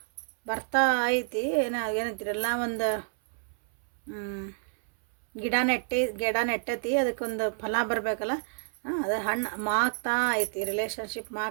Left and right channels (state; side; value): silent; left; 59 dB below the other